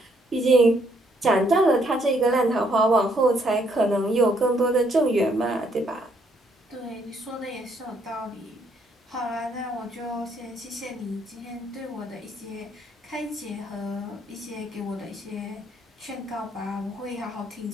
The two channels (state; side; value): normal; both; correlation 0.70